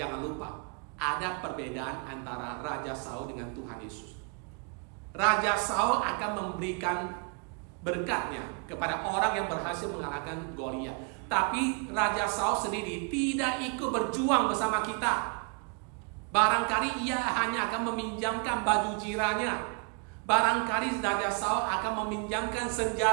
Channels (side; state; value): left; quieter; 35.3 dB